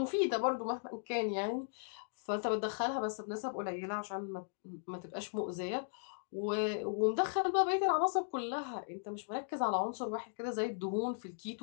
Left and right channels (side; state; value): right; silent; digital silence